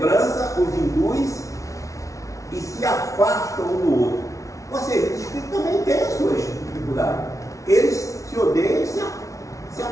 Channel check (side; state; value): right; late; 0.16 ms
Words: os induz e se afastam um do outro. Ou seja, os espíritos também têm as suas dificuldades. Eles se odeiam e se